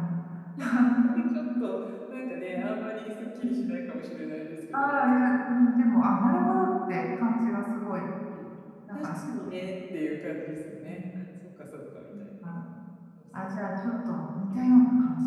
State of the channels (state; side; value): identical; both; correlation 1.00